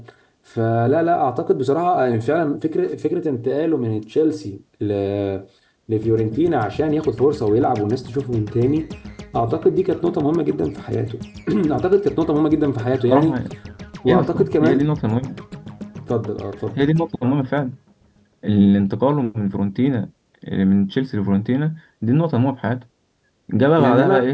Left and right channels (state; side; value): identical; both; correlation 1.00